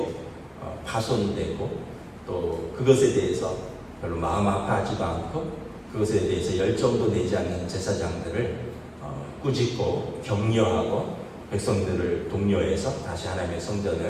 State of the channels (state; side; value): identical; both; correlation 1.00